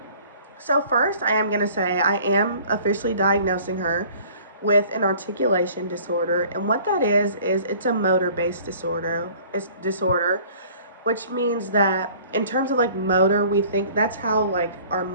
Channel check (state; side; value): inverted; both; correlation -0.51